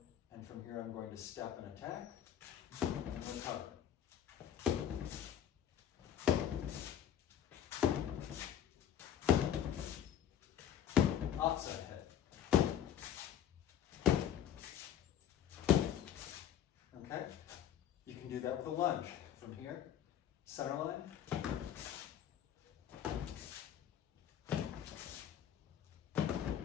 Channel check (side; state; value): right; quieter; 9.7 dB